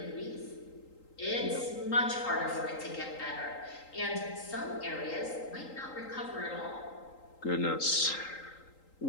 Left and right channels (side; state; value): right; late; 3.8 ms